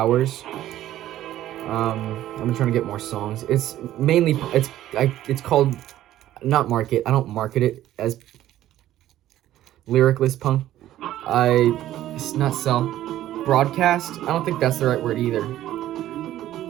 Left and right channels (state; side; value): quieter; left; 13.4 dB